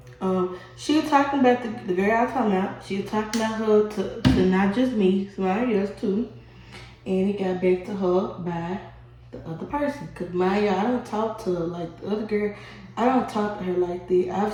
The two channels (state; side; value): identical; both; correlation 1.00